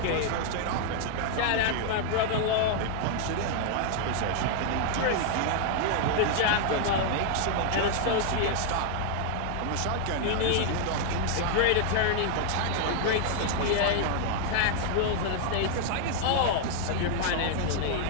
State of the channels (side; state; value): both; different; correlation 0.00